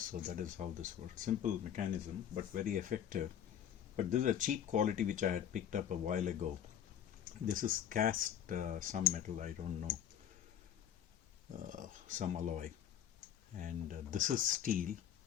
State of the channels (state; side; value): quieter; right; 9.7 dB